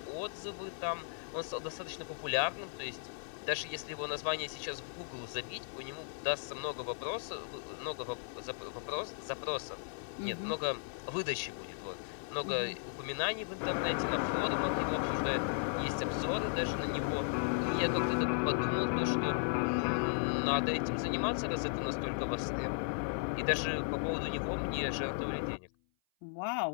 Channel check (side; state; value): right; silent; 54 dB below the other